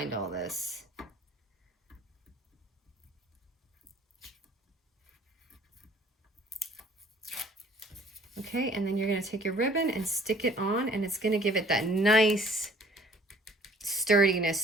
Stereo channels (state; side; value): normal; both; correlation 0.55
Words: all this. Okay, and then you're gonna take your ribbon and stick it on, and it's gonna give it that nice sturdiness